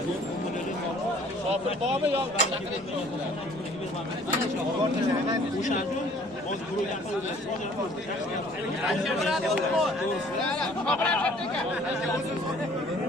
Shopir bormi yo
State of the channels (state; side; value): normal; both; correlation 0.55